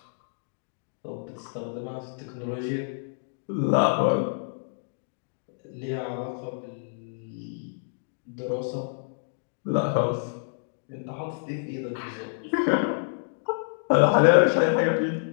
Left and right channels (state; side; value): silent; right; digital silence